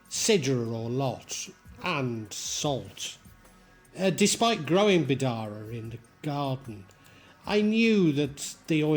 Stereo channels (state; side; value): identical; both; correlation 1.00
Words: sidr or lote, and salt. Despite growing bidara in the garden, I knew that the